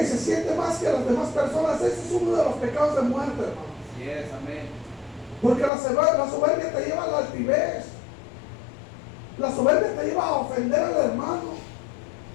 y se siente más que las demás personas. Ese es uno de los pecados de muerte, hermano. Yes, amén. Porque la soberbia te lleva a la altivez. La soberbia te lleva a ofender al hermano,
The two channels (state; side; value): drops out; right; at 5.7 s